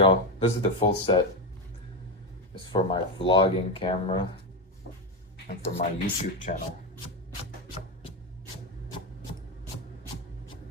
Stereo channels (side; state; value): both; normal; correlation 0.13